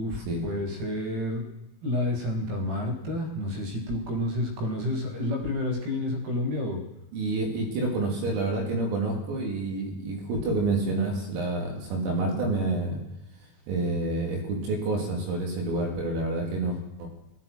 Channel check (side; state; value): left; late; 19 ms